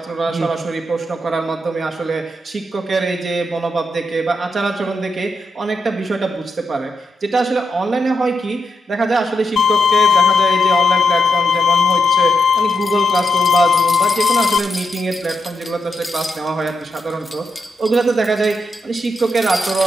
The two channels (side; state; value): both; normal; correlation 0.83